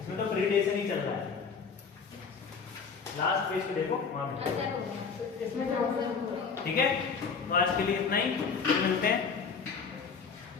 तो प्रीडेशन ही चल रहा है, लास्ट पेज पे देखो वहां पे, ठीक है। तो आज के लिए इतना ही, मिलते हैं।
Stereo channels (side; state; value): right; quieter; 5.6 dB